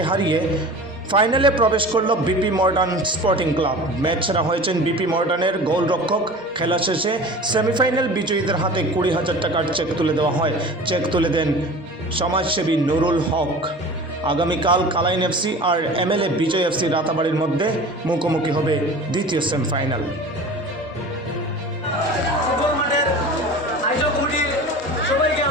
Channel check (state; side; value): normal; both; correlation 0.38